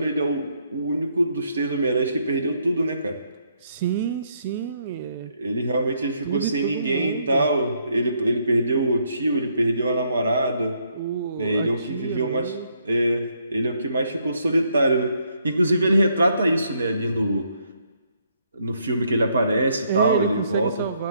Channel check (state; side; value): inverted; both; correlation -0.72